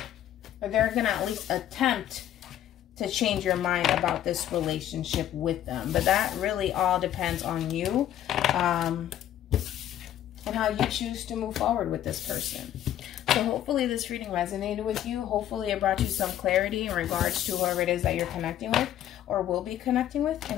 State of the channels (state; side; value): quieter; right; 11.6 dB